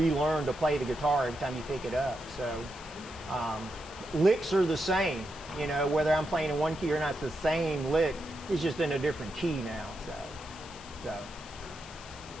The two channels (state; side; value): noise; left; hiss, 18 dB below the sound